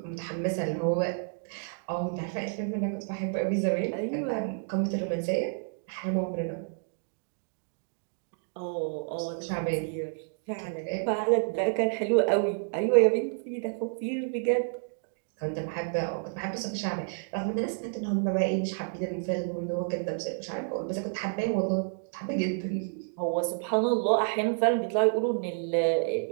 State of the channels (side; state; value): left; silent; digital silence